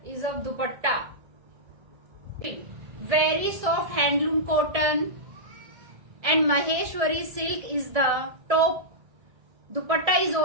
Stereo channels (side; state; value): left; late; 1.7 ms